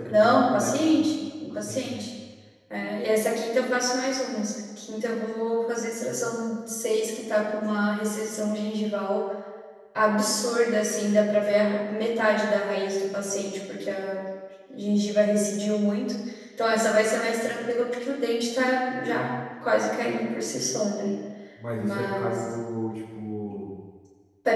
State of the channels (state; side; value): identical; both; correlation 1.00